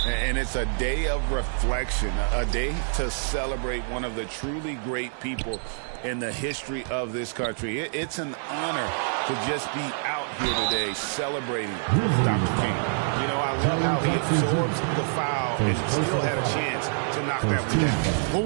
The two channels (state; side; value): silent; left; digital silence